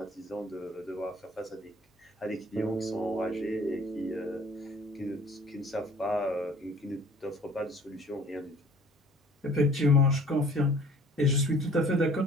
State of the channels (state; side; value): normal; both; correlation 0.52